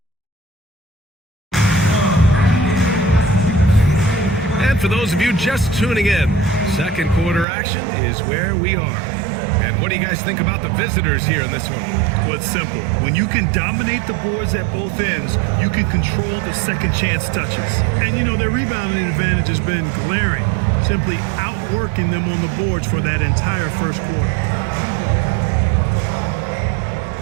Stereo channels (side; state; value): left; drops out; at 7.5 s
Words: For those of you just tuning in, second quarter action is where we are. And what do you guys think about the visitors here in this one? Well, it's simple. When you can dominate the boards at both ends, you can control the second chance touches. And you know, their rebounding advantage has been glaring, simply outworking them on the boards for that entire first quarter.